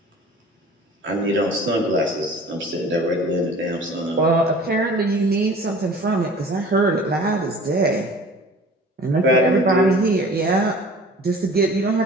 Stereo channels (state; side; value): normal; both; correlation 0.45